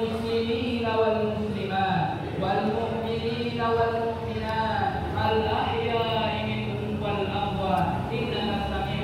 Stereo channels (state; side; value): identical; both; correlation 1.00